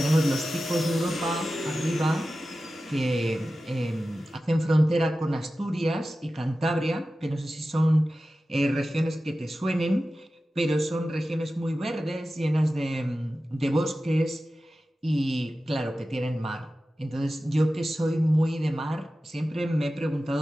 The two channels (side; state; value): both; normal; correlation 0.94